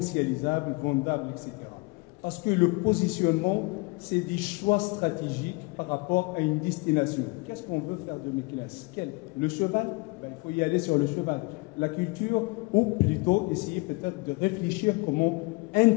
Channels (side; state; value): right; quieter; 27.0 dB